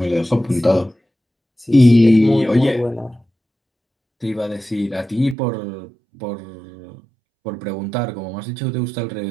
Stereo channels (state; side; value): drops out; left; at 5.4 s